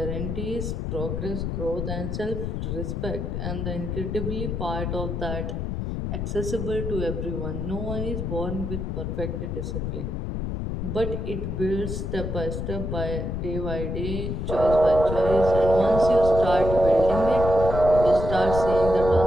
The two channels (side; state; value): left; noise; rumble, 3 dB below the sound